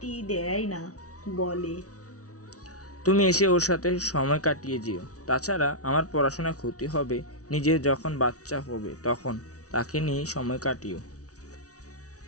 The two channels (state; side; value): late; right; 0.67 ms